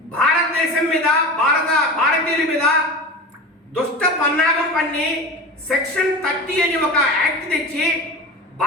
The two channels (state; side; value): normal; both; correlation 0.30